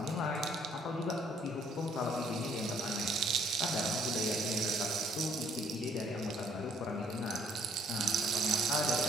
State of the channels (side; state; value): both; normal; correlation 0.62